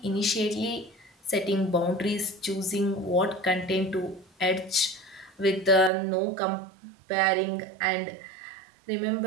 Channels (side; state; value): left; drops out; at 5.9 s